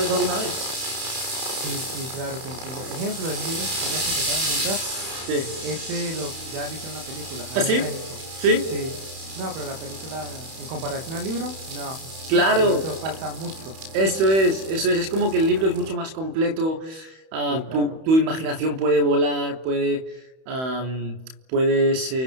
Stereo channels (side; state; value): left; late; 31 ms